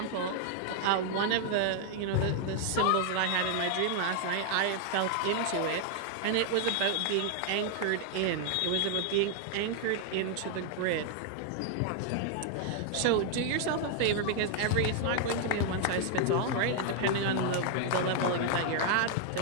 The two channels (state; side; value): different; both; correlation 0.00